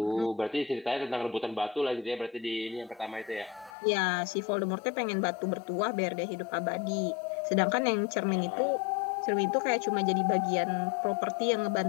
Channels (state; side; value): drops out; right; at 3.8 s